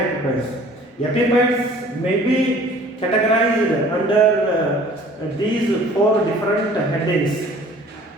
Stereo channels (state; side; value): normal; both; correlation 0.51